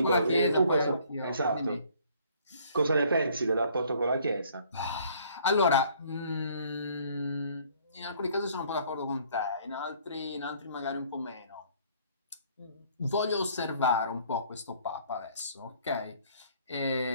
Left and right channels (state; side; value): inverted; both; correlation -0.59